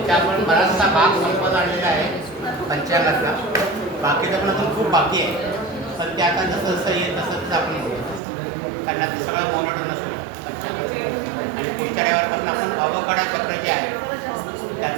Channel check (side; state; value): left; drops out; at 8.2 s